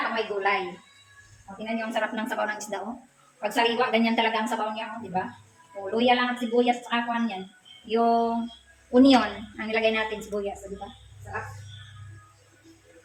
pag may gulay. O, tingnan nyo ang sarap ng sabaw ng isda, oh. Pag sariwa, ganyan talaga ang sabaw niya, oh, di ba? O, luya lang at sibuyas at saka kuhan yan. Yung onion, ang ilagay natin sibuyas, di ba? Sarap.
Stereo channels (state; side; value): identical; both; correlation 1.00